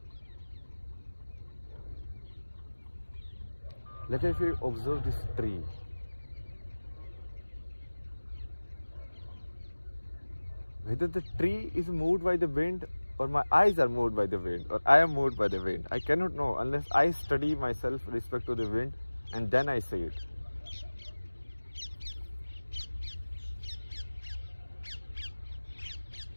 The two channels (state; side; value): inverted; both; correlation -1.00